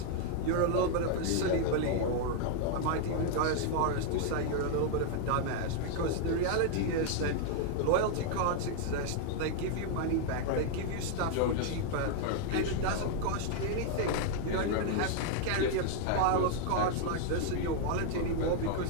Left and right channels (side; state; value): both; different; correlation 0.00